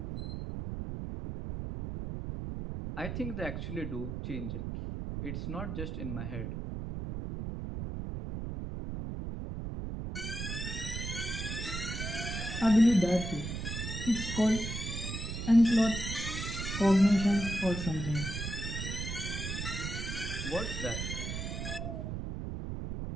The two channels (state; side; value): noise; right; rumble, 5 dB below the sound